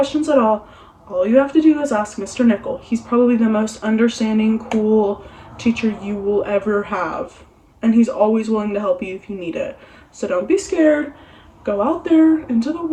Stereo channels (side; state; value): both; identical; correlation 1.00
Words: at all you have to do is ask Mr. Nichol. He's probably the most understanding, cool teacher you will ever have. And he's always willing to help you if you need it. So don't be scared. Go out there into the